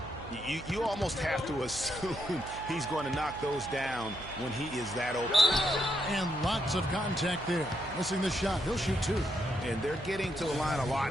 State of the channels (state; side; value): noise; right; hum, 15 dB below the sound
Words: You almost have to assume he's going to knock those down when he is that open. And lots of contact there. Missing the shot. He'll shoot 2. And they're getting to the line a lot